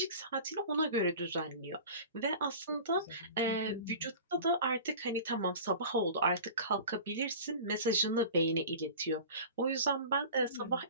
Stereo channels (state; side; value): inverted; both; correlation -0.37